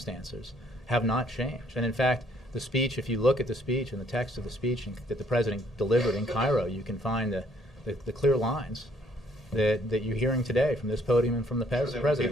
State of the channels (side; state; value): both; normal; correlation 0.65